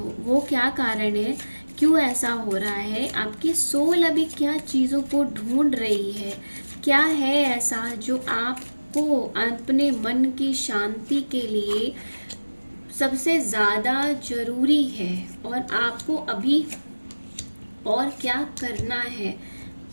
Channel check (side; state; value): both; inverted; correlation -1.00